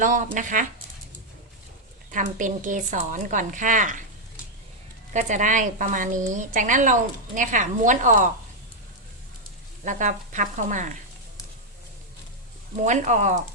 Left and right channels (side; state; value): both; normal; correlation -0.01